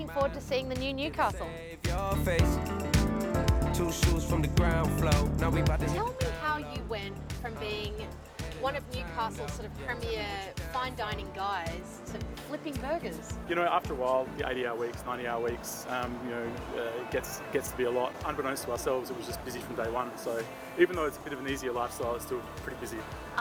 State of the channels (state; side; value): identical; both; correlation 1.00